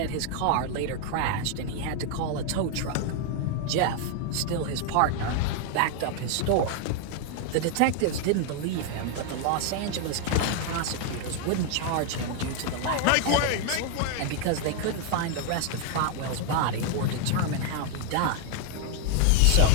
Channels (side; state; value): both; different; correlation 0.00